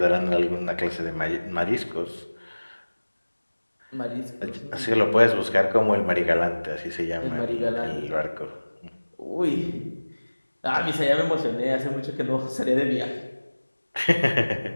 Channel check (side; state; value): both; inverted; correlation -1.00